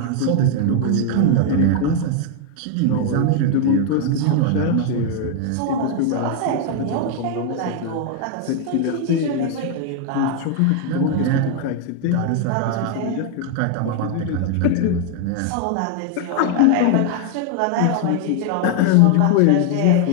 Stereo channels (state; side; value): different; both; correlation 0.00